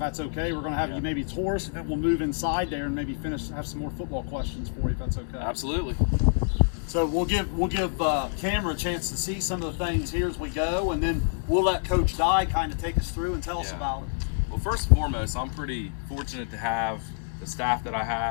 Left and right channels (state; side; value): silent; right; 60 dB below the other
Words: okay. We're going to have you maybe tour us, and we'll move inside there and maybe have some more football questions for you, if that's okay. Absolutely. So we'll give camera a chance to see some of the things here as we go, and then we'll let Coach Dye kind of take us through and tell us about it. Well, first and foremost, I'm pretty fortunate to have the staff that I